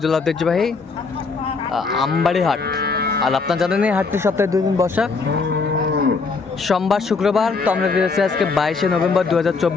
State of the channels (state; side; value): quieter; right; 4.5 dB